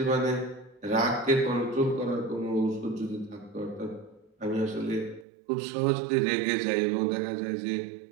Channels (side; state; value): left; drops out; at 5.2 s